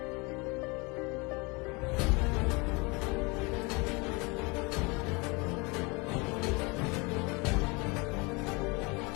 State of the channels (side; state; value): right; quieter; 27.7 dB